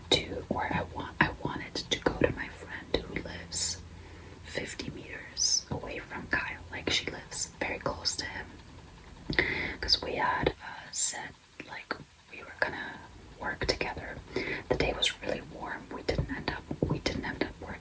to, or I wanted to go to my friend who lives 50 meters away from Kyle. Like she lives very close to him, because we had said like we were gonna work together. The day was really warm. We didn't end up working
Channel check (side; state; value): both; identical; correlation 1.00